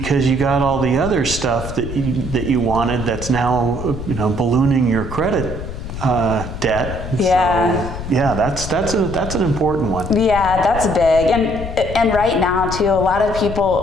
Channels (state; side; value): noise; left; rumble, 8 dB below the sound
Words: you got all the other stuff that you wanted that's now ballooning your credit debt. Yeah. So, yeah, that's an important one. Yeah, that's big. And right now too, a lot of